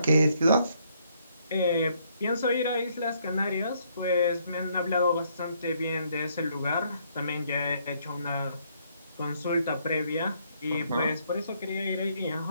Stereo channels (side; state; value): both; inverted; correlation -0.70